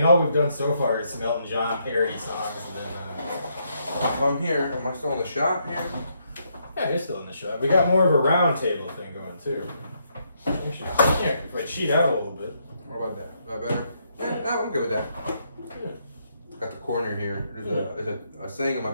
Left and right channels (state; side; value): inverted; both; correlation -0.76